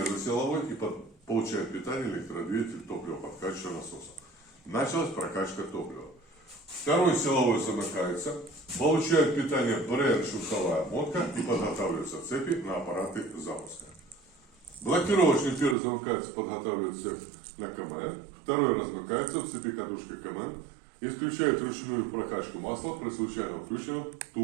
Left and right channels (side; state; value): left; drops out; at 15.8 s